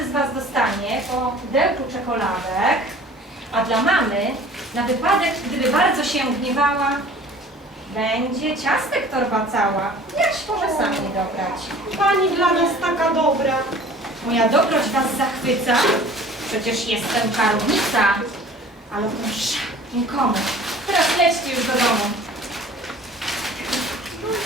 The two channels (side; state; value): both; normal; correlation 0.47